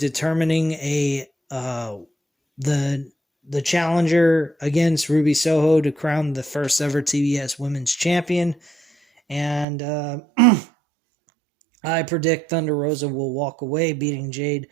the challenger against Ruby Soho to crown the first ever TBS Women's Champion. And I predict Thunder Rosa will walk away beating Jade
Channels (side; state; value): left; drops out; at 9.7 s